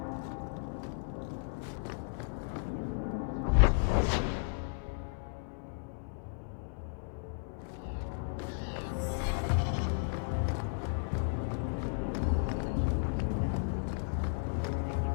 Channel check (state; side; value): silent; right; 55 dB below the other